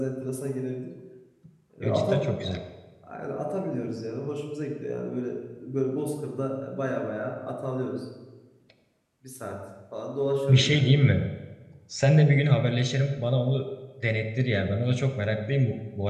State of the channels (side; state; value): both; identical; correlation 1.00